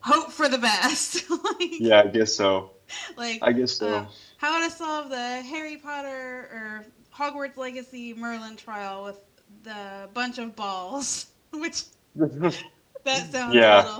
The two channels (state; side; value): identical; both; correlation 1.00